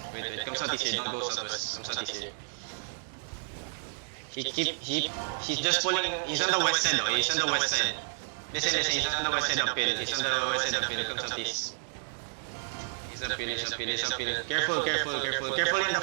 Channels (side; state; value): left; silent; digital silence